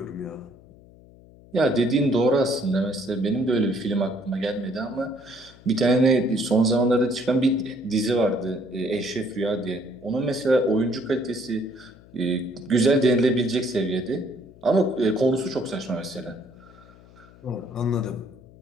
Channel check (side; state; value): left; noise; hum, 24 dB below the sound